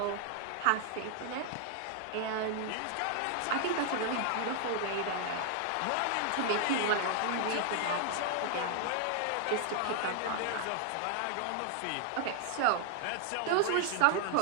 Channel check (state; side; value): different; both; correlation 0.00